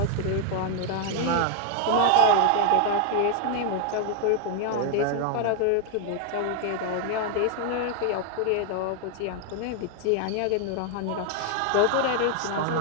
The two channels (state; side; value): different; both; correlation 0.00